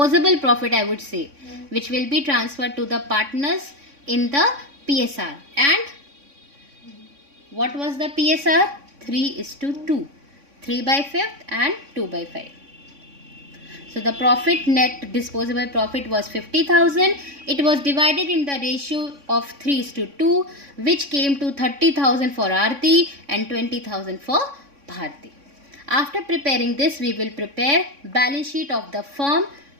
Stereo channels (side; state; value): left; late; 3.6 ms